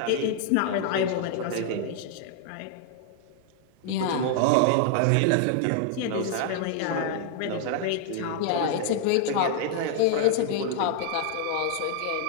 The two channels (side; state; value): both; different; correlation 0.00